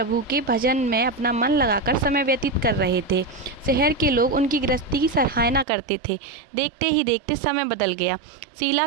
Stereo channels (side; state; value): left; drops out; at 5.7 s